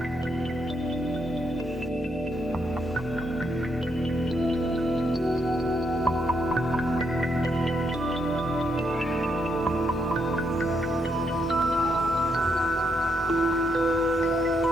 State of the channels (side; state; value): both; normal; correlation 0.78